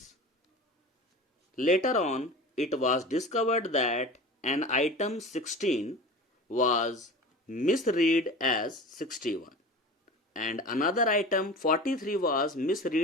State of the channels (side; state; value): both; normal; correlation 0.34